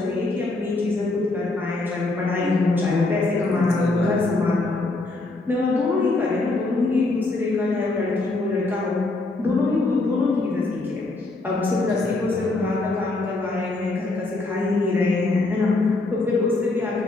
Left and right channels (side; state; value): right; quieter; 3.1 dB